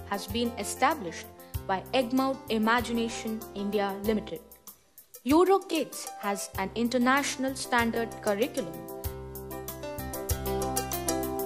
has been established by Egmont Imagination India Limited. Euro Kids has an international standard curriculum.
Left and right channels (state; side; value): identical; both; correlation 1.00